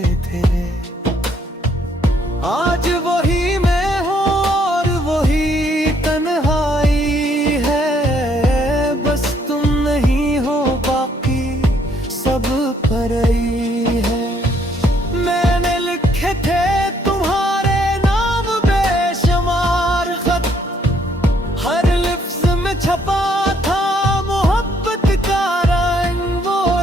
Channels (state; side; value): normal; both; correlation 0.68